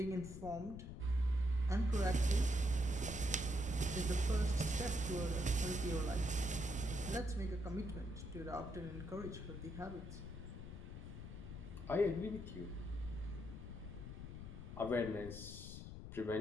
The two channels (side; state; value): left; noise; rumble, 10 dB below the sound